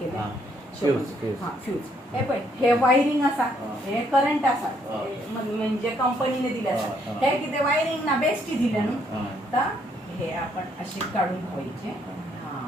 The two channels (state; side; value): normal; both; correlation 0.70